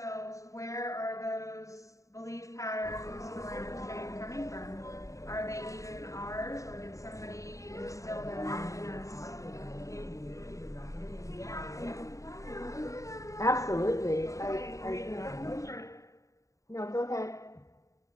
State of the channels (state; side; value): late; right; 0.16 ms